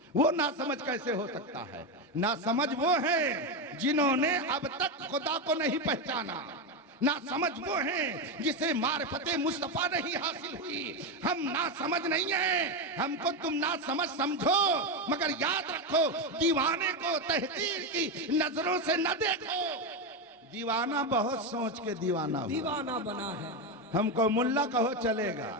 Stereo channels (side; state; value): both; normal; correlation 0.11